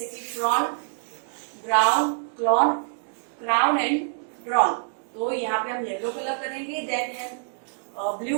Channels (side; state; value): left; silent; digital silence